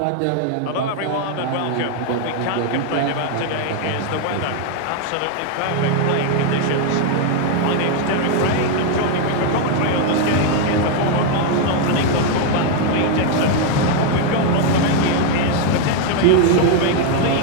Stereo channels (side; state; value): both; different; correlation 0.01